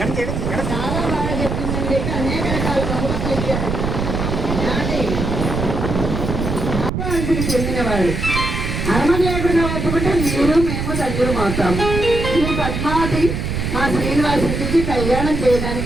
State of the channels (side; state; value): right; noise; rumble, 2 dB below the sound